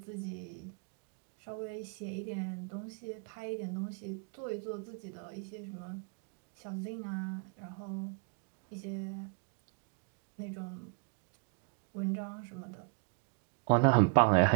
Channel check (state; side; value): quieter; left; 36.7 dB